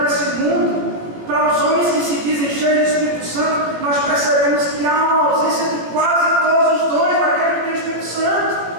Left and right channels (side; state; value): left; late; 18 ms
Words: esse mundo, para os homens que se dizem cheios do Espírito Santo, nós percebemos que há uma ausência de quase todos os dons daquele que tem o Espírito Santo,